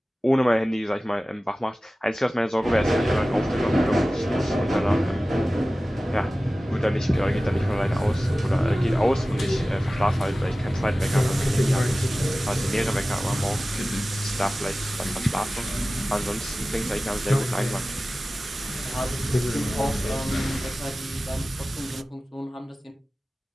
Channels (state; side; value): normal; both; correlation 0.96